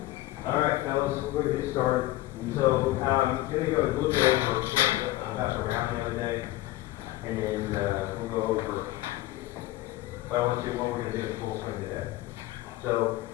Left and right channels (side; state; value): right; quieter; 16.8 dB